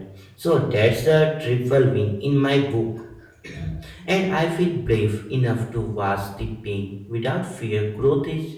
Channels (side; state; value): both; identical; correlation 1.00